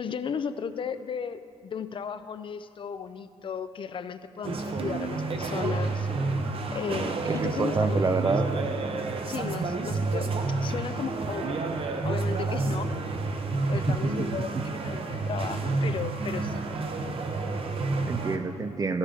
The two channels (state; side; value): normal; both; correlation 0.70